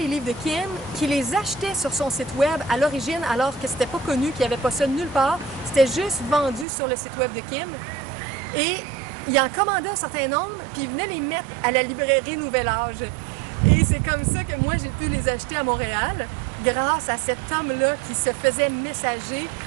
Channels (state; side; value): drops out; left; at 6.7 s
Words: livres de Kim, qui les achetait sur son site web à l'origine, alors que c'était pas connu, qu'il n'y avait pas ça nulle part. C'était juste vendu sur le site web de Kim. Et il en commandait un certain nombre, puis il venait les mettre à la librairie Nouvel Âge. Et c'est comme ça que moi, j'ai pu les acheter à Montréal, grâce à cet homme-là qui se faisait messager